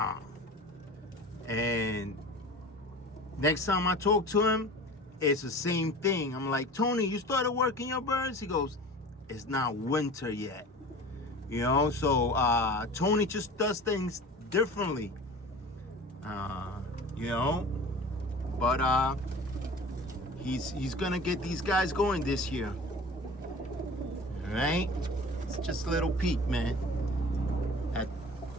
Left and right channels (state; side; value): normal; both; correlation 0.38